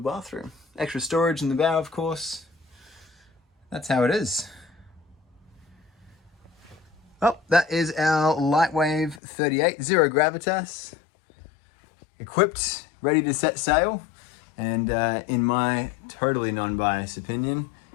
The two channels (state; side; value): drops out; right; at 9.2 s